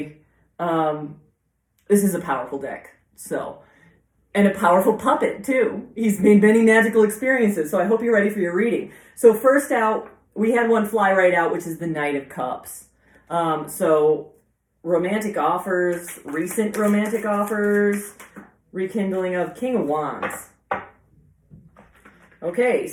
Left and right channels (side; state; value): both; identical; correlation 1.00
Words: this is a powerful deck, so, and a powerful puppet too. He's made many magical experiences, so I hope you're ready for your reading. So first out, we had one fly right out, which is the Knight of Cups. So romantic offers, recent romantic offers, rekindling of King of Wands. Okay,